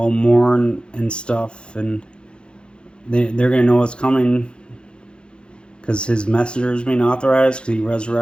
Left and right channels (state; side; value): late; right; 0.053 ms